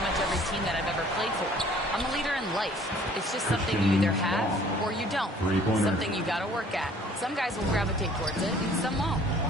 every team that I've ever played for. I'm a leader in life. It's just something you either have or you don't. Something you got to work at. Some guys will gravitate towards it and some won't.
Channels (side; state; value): both; normal; correlation 0.55